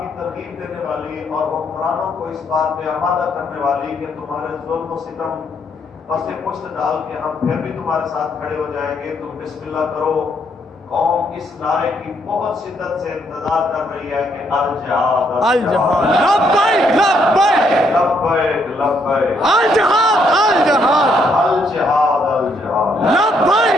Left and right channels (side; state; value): both; normal; correlation 0.72